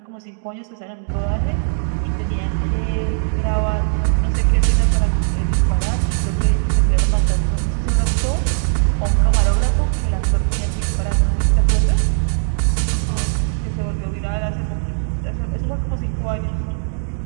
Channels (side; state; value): left; silent; digital silence